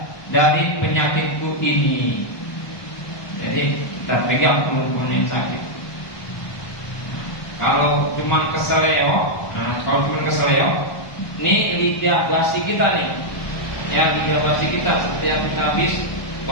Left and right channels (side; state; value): right; late; 1.2 ms